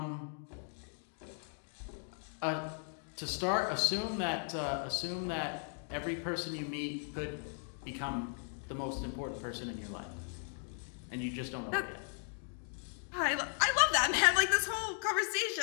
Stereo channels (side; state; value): right; silent; 53 dB below the other